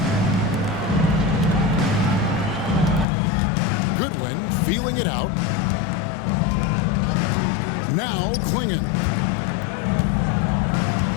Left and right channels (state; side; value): drops out; right; at 3.1 s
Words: Goodwin feeling it out. Now Klingon.